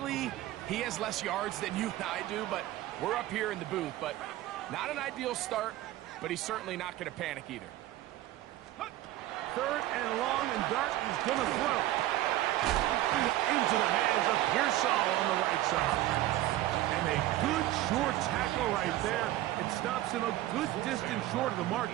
he has less yards than you and I do, but we're up here in the booth. But not an ideal start, but he's certainly not going to panic either. 3rd and long, and Dart is going to throw. Into the hands of Pearsall on the right side. And a good short tackle right there. It stops him a good distance short of the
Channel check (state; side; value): quieter; left; 15.2 dB